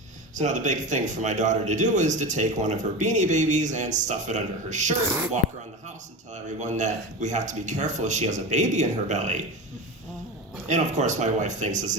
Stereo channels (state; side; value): normal; both; correlation 0.26